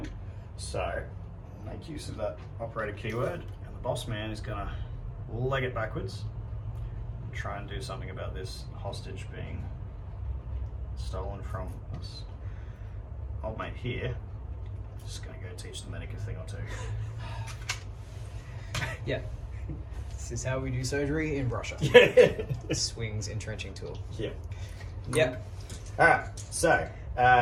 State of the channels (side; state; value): both; identical; correlation 1.00